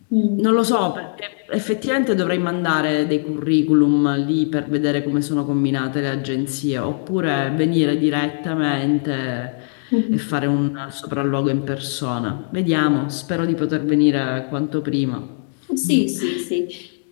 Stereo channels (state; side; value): silent; right; digital silence